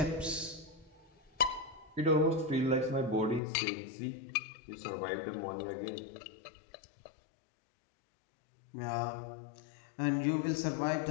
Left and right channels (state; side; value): drops out; right; at 3.4 s